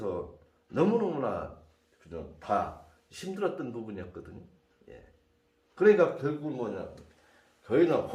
너무너무나 그냥 다 힘들었던 부분이었거든요. 예. 그러니까 결국은 뭐냐, 저희는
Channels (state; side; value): identical; both; correlation 1.00